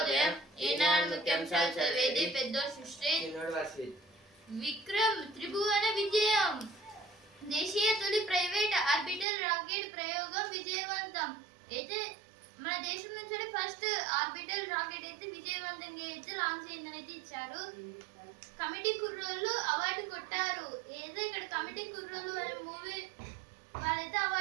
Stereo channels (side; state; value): left; drops out; at 9.2 s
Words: ఈనాడు ముఖ్యాంశాలు చదివేది పెద్ద సృష్టి. విక్రమ్ త్రిభువన విజయం. దేశీయ తొలి ప్రైవేట్ ఆర్బిటల్ రాకెట్ ప్రయోగం విజయవంతం. అయితే మన దేశం నుంచి ఫస్ట్ ఆర్బిటల్ రాకెట్ అయితే విజయవంతంగా అయితే లాంచ్ అయిందని అయితే ఇచ్చారు. కమిటీ కుర్రోళ్ళు అవార్డు కొట్టారు. ఏదో ఇక్కడ కమిటీ కుర్రోళ్ళు అనే మూవీ వాళ్ళైతే